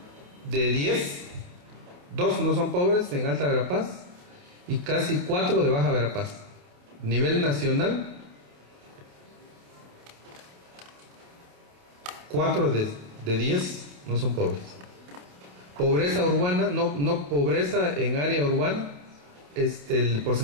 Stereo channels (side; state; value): left; late; 28 ms